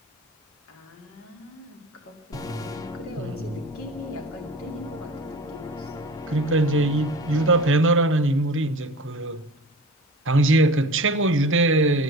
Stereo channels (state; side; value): normal; both; correlation 0.37